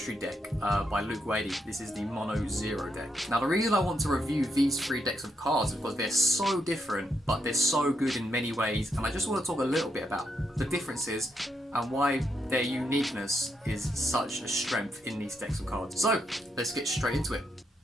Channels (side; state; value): both; normal; correlation 0.79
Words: deck by Luke Wadey. This is the Mono Xero deck. Now the reason I want to review these three decks of cards is because they're so different, but they're so good in many ways. And I just want to talk a little bit about the differences and why their uniqueness is such a strength in these decks of cards. So, let's get straight into it.